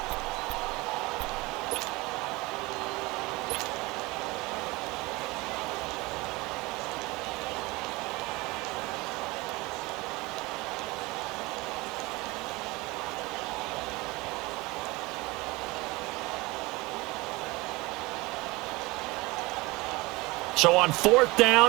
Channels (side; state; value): left; quieter; 22.8 dB